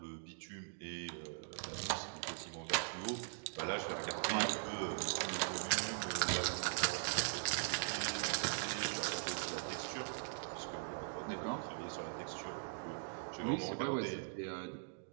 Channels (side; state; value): left; silent; digital silence